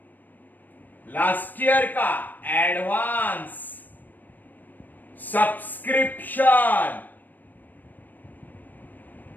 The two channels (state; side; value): late; right; 0.088 ms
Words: लास्ट ईयर का advance subscription,